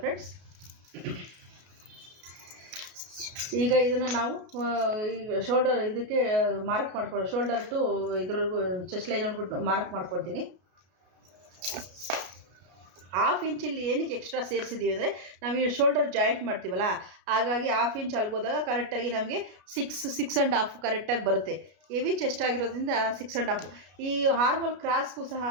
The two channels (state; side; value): late; left; 33 ms